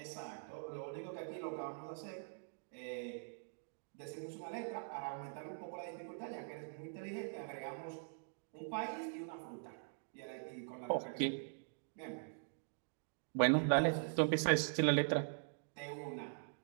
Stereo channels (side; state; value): left; silent; digital silence